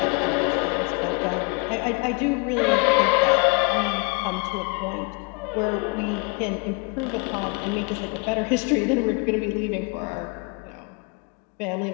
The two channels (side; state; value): right; quieter; 31.5 dB